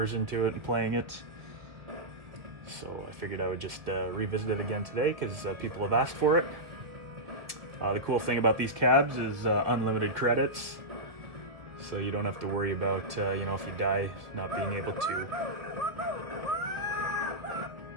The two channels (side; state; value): left; late; 1.5 ms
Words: into it and playing it. So I figured I would just revisit it again today because people have asked for it. The cool thing about these cabs is unlimited credits. So you don't have to worry about, if you die, not being able to.